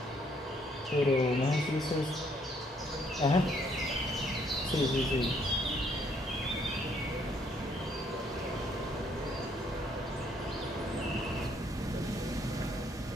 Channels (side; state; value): both; normal; correlation 0.68